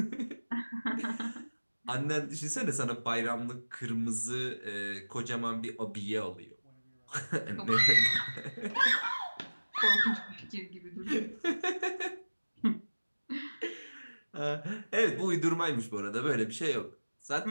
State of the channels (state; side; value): inverted; both; correlation -1.00